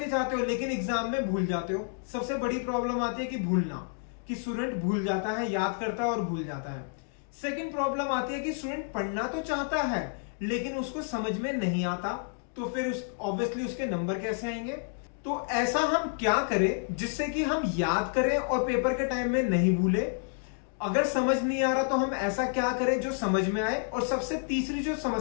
जाते हो लेकिन एग्जाम में भूल जाते हो। सबसे बड़ी प्रॉब्लम आती है कि भूलना, कि स्टूडेंट भूल जाता है, याद करता है और भूल जाता है। सेकंड प्रॉब्लम आती है कि स्टूडेंट पढ़ना तो चाहता है लेकिन उसको समझ में नहीं आता, तो फिर ऑब्वियसली उसके नंबर कैसे आएंगे। तो ऐसा हम क्या करें जिससे कि हम याद करें और पेपर के टाइम में नहीं भूले। अगर समझ नहीं आ रहा तो हम ऐसा क्या करें जो समझ में आए। और सबसे तीसरी जो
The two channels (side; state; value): right; silent; 58 dB below the other